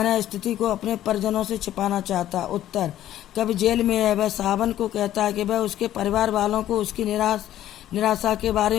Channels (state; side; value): quieter; right; 12.6 dB